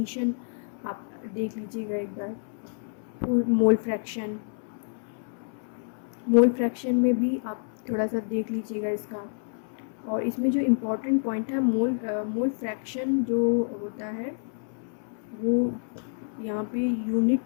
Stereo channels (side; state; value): right; silent; 59 dB below the other